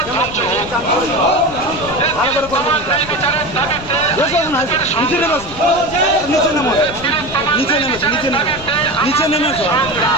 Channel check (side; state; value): left; noise; rumble, 15 dB below the sound